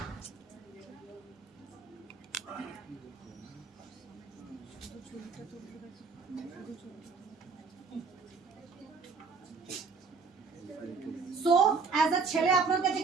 সো অ্যাজ আ ছেলে আপনার কাছে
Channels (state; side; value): quieter; left; 4.9 dB